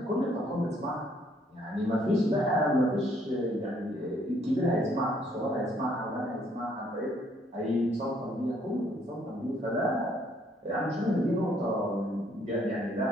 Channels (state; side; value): normal; both; correlation 0.66